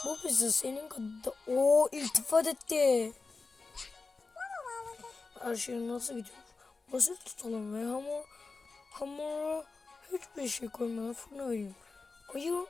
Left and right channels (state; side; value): quieter; right; 4.1 dB